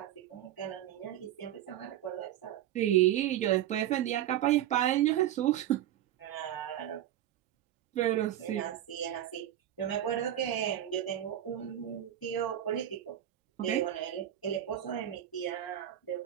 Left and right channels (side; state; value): left; quieter; 11.9 dB